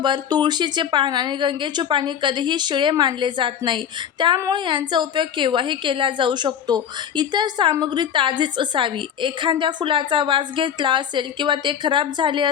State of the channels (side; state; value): right; quieter; 8.8 dB